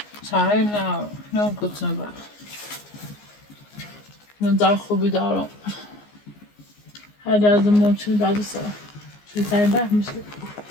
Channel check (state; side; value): late; right; 14 ms